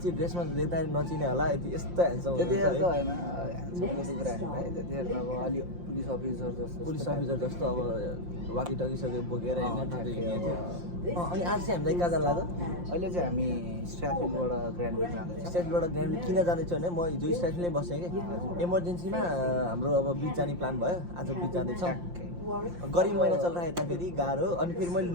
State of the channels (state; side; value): late; left; 5.7 ms